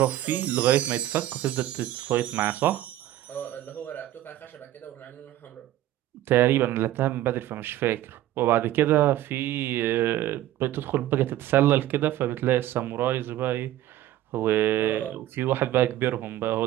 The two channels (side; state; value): left; quieter; 13.8 dB